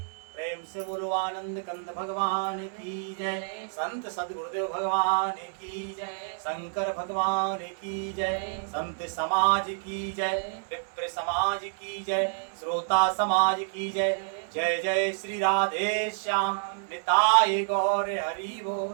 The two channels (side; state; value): left; silent; digital silence